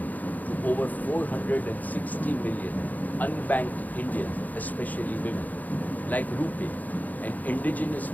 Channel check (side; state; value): right; late; 0.081 ms